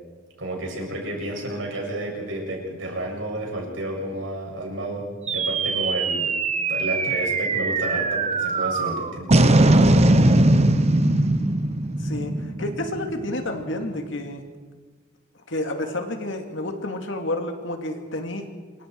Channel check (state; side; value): normal; both; correlation 0.60